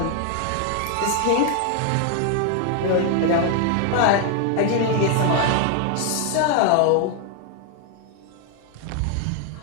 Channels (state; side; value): different; both; correlation 0.01